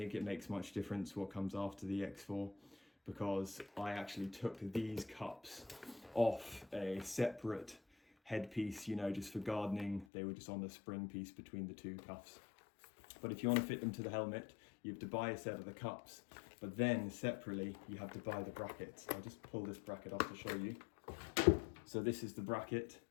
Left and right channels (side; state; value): right; drops out; at 10.1 s